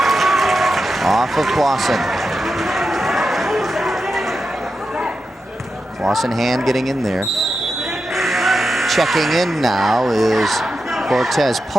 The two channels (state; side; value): normal; both; correlation 0.89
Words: Off of Clawson. Clawson hand getting in there. Checking in now is Cortez